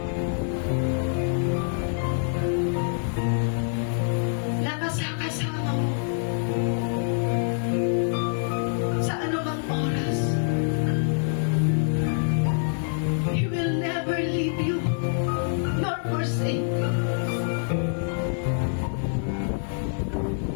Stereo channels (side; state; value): right; silent; 61 dB below the other